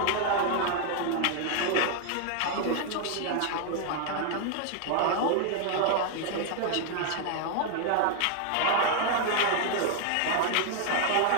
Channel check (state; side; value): different; both; correlation 0.00